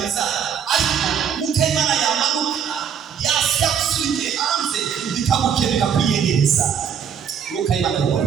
ariko Mwuka Imana yamanuka yasya gusubiye hanze bikagukira bikakwiyegereza. Mwuka Imana yomora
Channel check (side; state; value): left; quieter; 7.7 dB